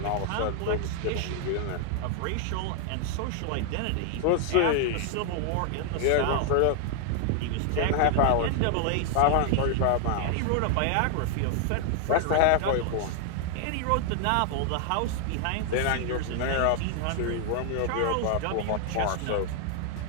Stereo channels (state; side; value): different; both; correlation 0.00